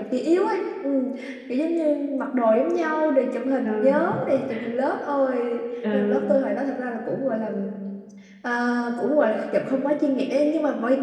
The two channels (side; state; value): both; identical; correlation 1.00